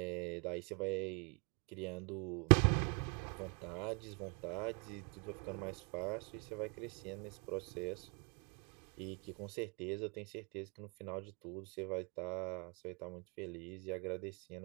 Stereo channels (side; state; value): left; quieter; 33.7 dB